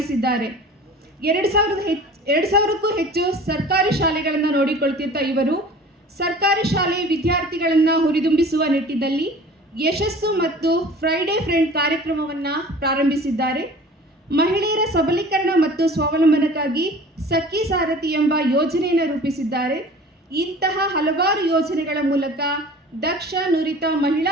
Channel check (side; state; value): both; normal; correlation 0.43